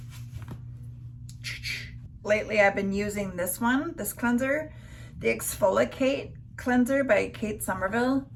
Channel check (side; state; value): both; identical; correlation 1.00